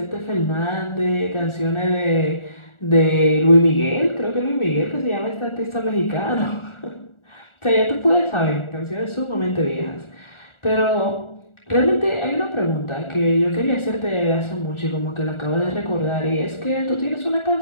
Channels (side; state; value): right; late; 1.4 ms